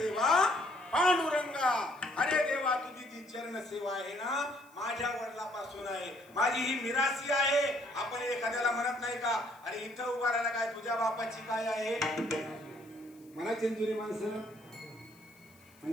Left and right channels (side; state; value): left; noise; hiss, 29 dB below the sound